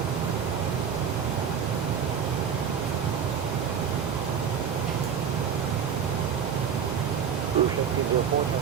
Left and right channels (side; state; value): left; quieter; 7.5 dB